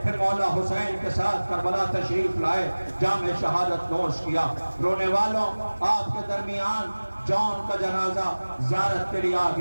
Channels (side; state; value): both; inverted; correlation -1.00